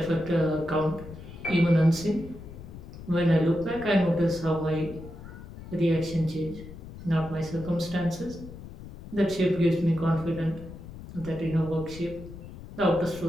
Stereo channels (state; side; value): noise; left; rumble, 14 dB below the sound